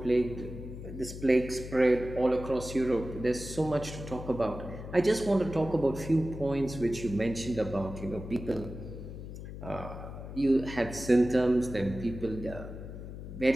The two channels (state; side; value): noise; left; hum, 10 dB below the sound